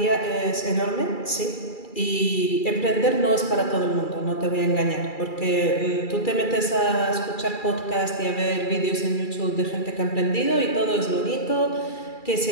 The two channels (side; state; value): right; late; 2.3 ms